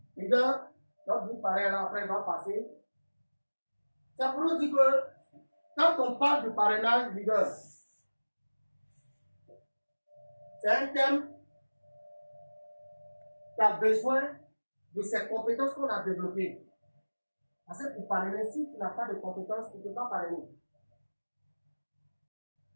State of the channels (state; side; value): inverted; both; correlation -1.00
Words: Leader, notre big parrain là, après il va passer. Ça pour nous dire que quand on parle du parrainage, leader, c'est un thème qui a besoin de ces compétences qu'on a développées. Parce que pour parrainer, si tu n'as pas de compétences, tu ne peux pas parrainer.